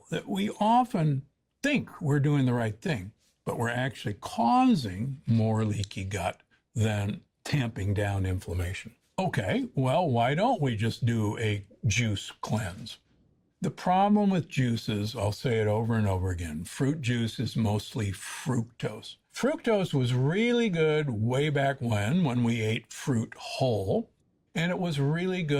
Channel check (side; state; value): both; identical; correlation 1.00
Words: that we often think we're doing the right thing, but we're actually causing more leaky gut than tamping down inflammation. Okay, well, why don't we just do a juice cleanse? The problem with juices, I'll say it over and over again, fruit juice is mostly fructose. Fructose was really good way back when we ate fruit whole, and it was really